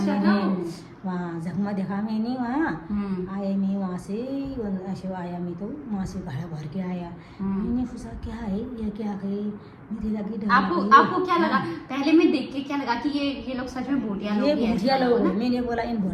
मैंने, था वो। वहाँ जगमग देखा मैंने। वहाँ आया मैं, वहाँ से ऐसे आया मैं, तो वहाँ से घड़ा भर के आया। मैंने पूछा क्या है ये, क्या है? मुझे लगी डर आपको लगी। आपको क्या लगा? पहले में देख के क्या लगा कि ये लोग सच में भूतिया लोग ये ही हैं? भूटिया ऐसा लोग लगा हैं। ना? मैंने बोला इन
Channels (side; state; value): both; identical; correlation 1.00